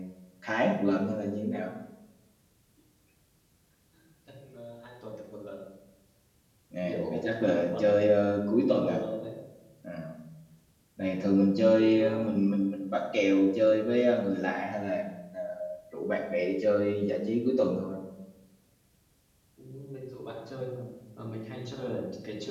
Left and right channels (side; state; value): both; identical; correlation 1.00